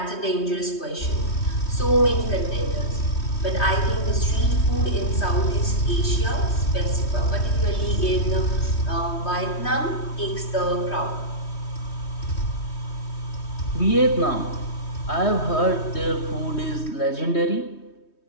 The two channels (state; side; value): late; right; 3.2 ms